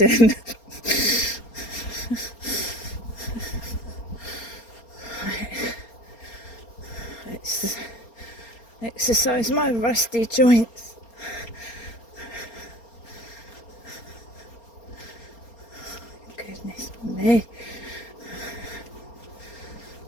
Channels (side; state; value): right; late; 4.3 ms